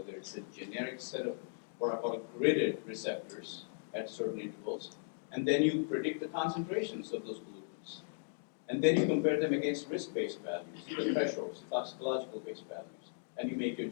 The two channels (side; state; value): right; silent; digital silence